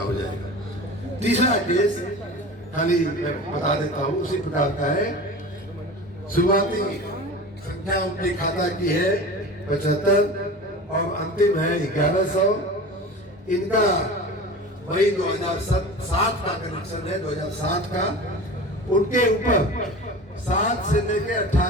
जाएगा। तीसरा केस खाली मैं बता देता हूँ, उसी प्रकार का है। शुरुआती संख्या उनके खाता की है 75 और अंतिम है 1,100। इनका मई 2007 का कनेक्शन है, 2007 का। उनके ऊपर 7 से लेके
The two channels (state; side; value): normal; both; correlation 0.34